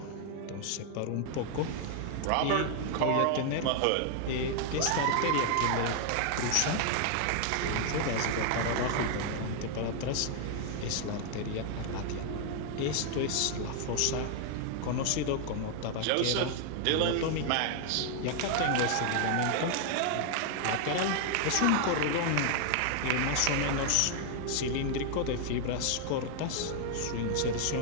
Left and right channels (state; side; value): different; both; correlation 0.00